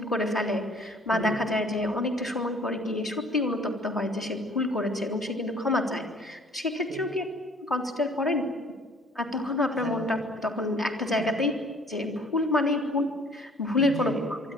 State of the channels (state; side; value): normal; both; correlation 0.54